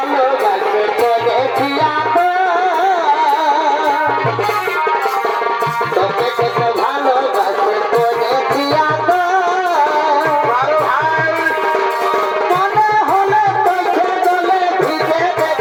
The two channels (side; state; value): both; identical; correlation 1.00